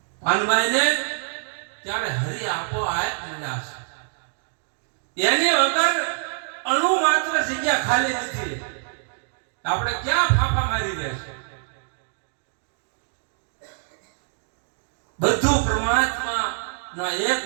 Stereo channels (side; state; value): left; silent; digital silence